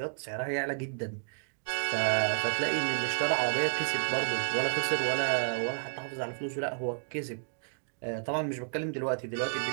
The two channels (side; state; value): left; silent; digital silence